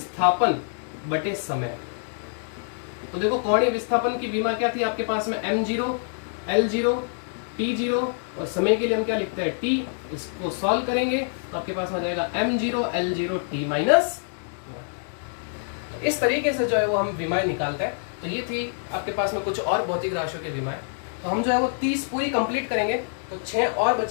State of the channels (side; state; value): right; silent; digital silence